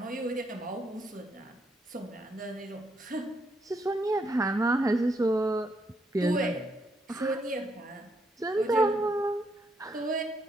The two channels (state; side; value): normal; both; correlation 0.77